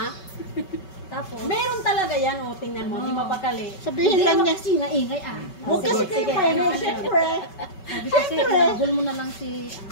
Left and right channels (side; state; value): right; late; 5.3 ms